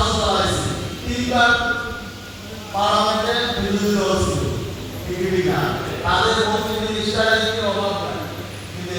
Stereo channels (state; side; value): identical; both; correlation 1.00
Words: চালাইছে, 3বার পার্লামেন্টে বিরোধী দল ছিল, বিজেপি না। তাদের মন্ত্রী মিনিস্টারের কি অভাব নাই, কিন্তু